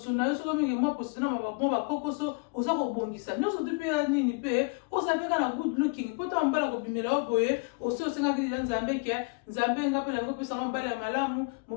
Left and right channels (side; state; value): right; quieter; 32.9 dB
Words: na yo soki mingi mwa poso na mwa bakokoso oza kobongisa nyonso te mpe nini mpe oza mpe kaka na good looking mpo ta mobala kobimela yo boye osi osengaki lila nzambe ke nzambe nga mpe nango opesanga mobali ya malamu